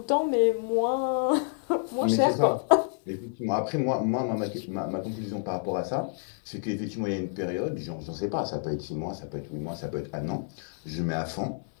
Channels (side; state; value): right; silent; 59 dB below the other